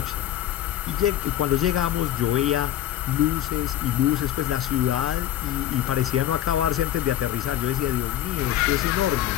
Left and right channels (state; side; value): quieter; right; 12.4 dB